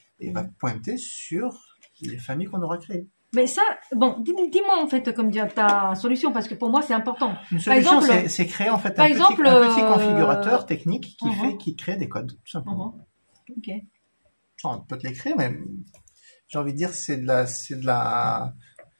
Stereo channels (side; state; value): both; inverted; correlation -1.00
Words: il va pointer sur les familles qu'on aura créées. Mais ça, bon, dis-moi en fait, comme dire, ta solution, parce que pour moi, c'est important. Une solution, c'est créer en fait un petit configurateur technique qui crée des codes, tout simplement. Ok. On peut te l'écrire, mais j'ai envie de dire, c'est de la.